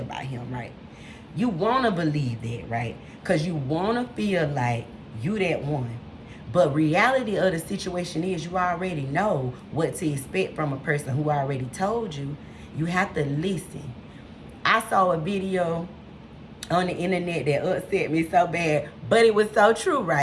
him, right? You want to believe that, right? Because you want to feel like you that one. But reality of the situation is you already know what to expect from a person who already told you. You have to listen. I saw a video on the internet that upset me so bad, but it was so true,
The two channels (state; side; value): identical; both; correlation 1.00